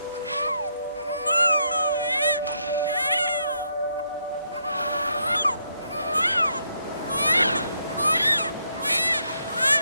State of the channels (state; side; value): inverted; both; correlation -0.77